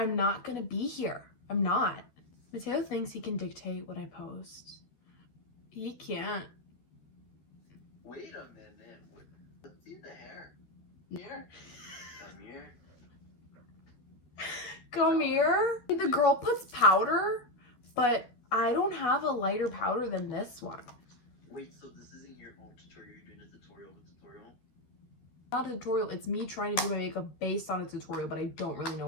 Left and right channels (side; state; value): right; late; 12 ms